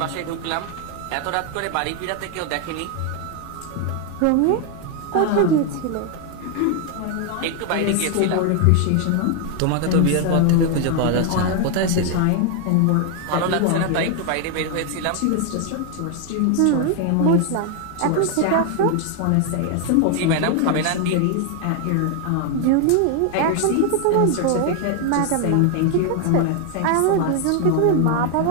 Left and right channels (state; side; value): different; both; correlation 0.00